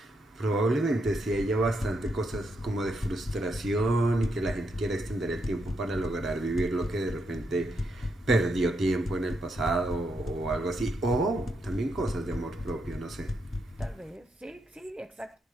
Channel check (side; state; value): both; normal; correlation 0.80